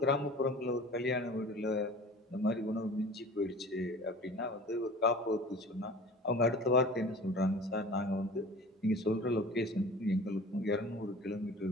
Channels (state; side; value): normal; both; correlation 0.41